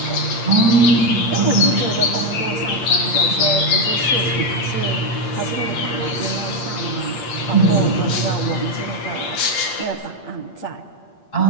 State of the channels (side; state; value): right; late; 8.6 ms